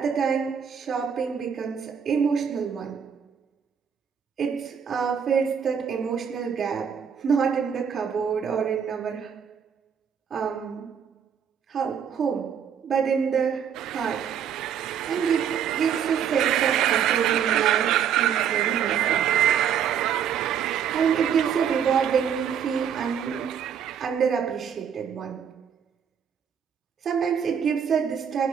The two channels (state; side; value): quieter; left; 7.9 dB